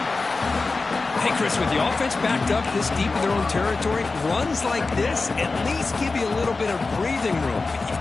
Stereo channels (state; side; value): quieter; right; 3.8 dB